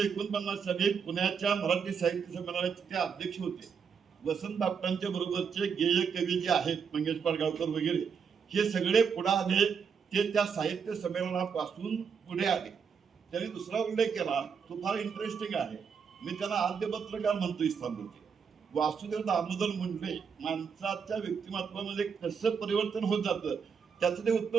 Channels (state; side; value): quieter; left; 6.4 dB